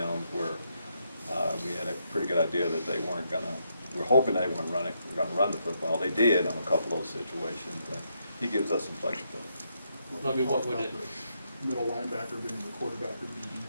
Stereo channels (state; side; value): inverted; both; correlation -0.78